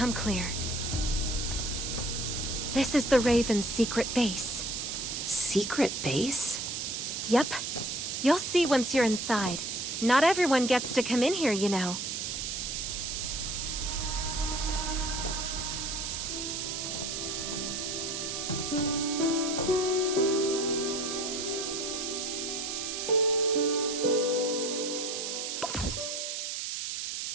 clear. This is the Raven's secret base. Secret base? Yep. You'll see once you're inside. Not everyone gets to come in here, you know.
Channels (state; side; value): noise; right; hiss, 3 dB below the sound